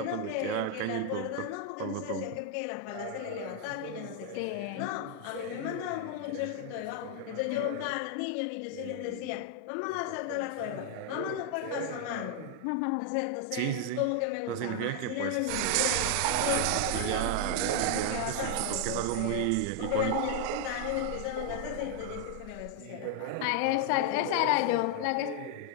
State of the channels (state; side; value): different; both; correlation 0.00